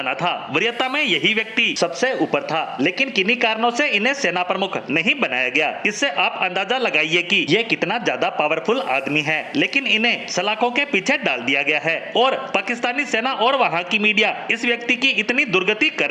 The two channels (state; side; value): identical; both; correlation 1.00